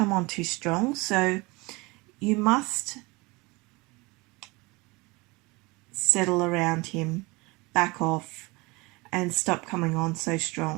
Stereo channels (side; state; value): left; quieter; 24.8 dB